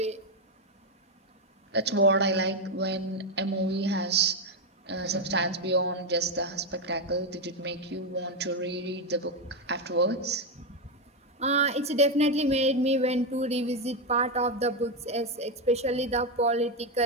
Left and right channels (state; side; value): normal; both; correlation 0.06